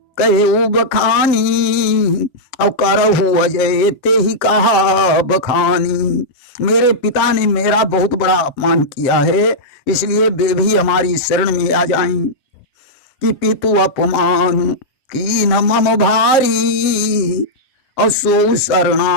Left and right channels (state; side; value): late; right; 7.5 ms